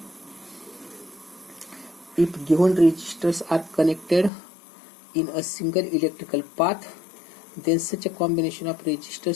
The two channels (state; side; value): drops out; right; at 4.3 s